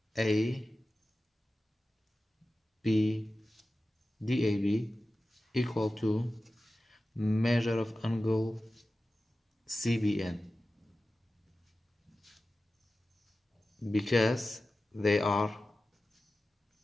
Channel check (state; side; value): normal; both; correlation 0.95